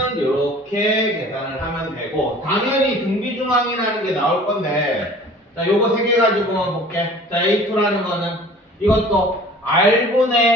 이렇게 계산을 하면 되고 당연히 등비중항이라는 게 나올 건데 자, 요거 3개 가지고만 볼게. 자, A2라는 거는 이것도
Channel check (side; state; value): both; normal; correlation 0.47